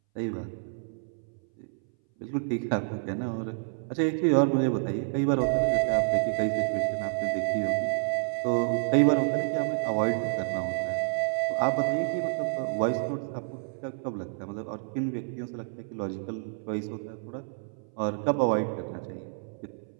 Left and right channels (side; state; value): left; silent; 59 dB below the other